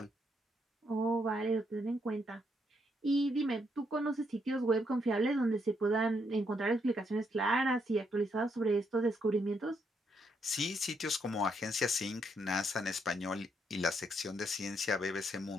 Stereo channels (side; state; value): both; normal; correlation 0.75